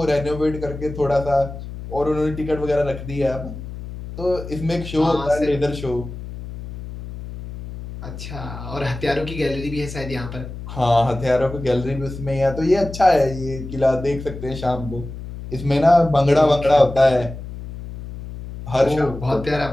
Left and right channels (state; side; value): noise; left; hum, 11 dB below the sound